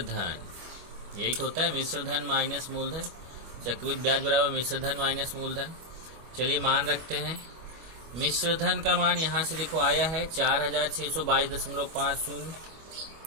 यही तो होता है, मिश्र धन माइनस मूलधन। चक्रवृद्धि ब्याज बराबर मिश्र धन माइनस मूलधन। चलिए मान रखते हैं। मिश्र धन का मान यहां से देखो आया है 4622.50,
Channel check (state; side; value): late; left; 25 ms